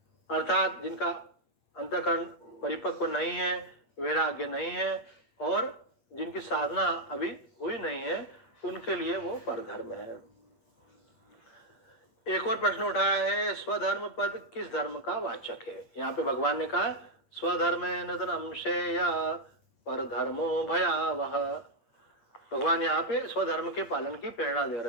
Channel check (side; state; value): right; late; 8.4 ms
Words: अर्थात जिनका अंतःकरण परिपक्व नहीं है, वैराग्य नहीं है और जिनकी साधना अभी हुई नहीं है, उनके लिए वो परधर्म है। एक और प्रश्न उठाया है, स्वधर्म पद किस धर्म का वाचक है? यहाँ पे भगवान ने कहा स्वधर्मेन धनं श्रेया परधर्मो भयावह। भगवान यहाँ पे स्वधर्म के पालन की प्रेरणा दे